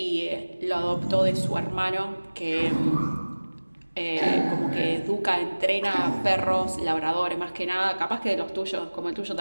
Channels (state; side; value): inverted; both; correlation -1.00